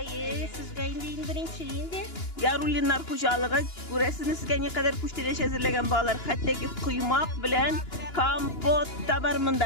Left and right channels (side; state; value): right; late; 2.9 ms